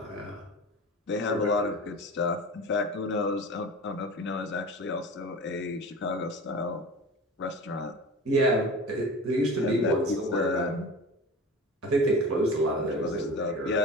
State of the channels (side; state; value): both; normal; correlation 0.35